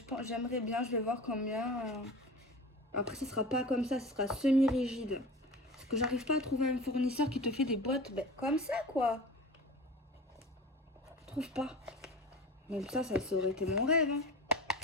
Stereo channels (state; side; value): normal; both; correlation 0.35